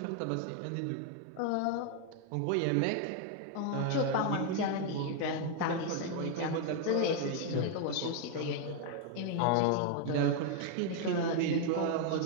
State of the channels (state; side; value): different; both; correlation 0.00